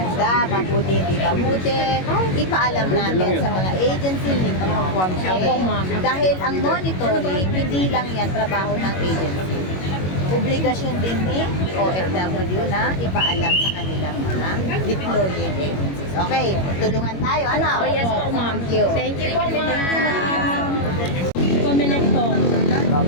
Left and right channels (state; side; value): late; right; 21 ms